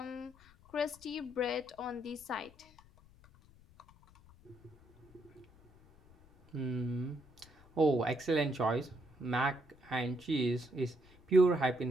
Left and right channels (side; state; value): left; noise; rumble, 25 dB below the sound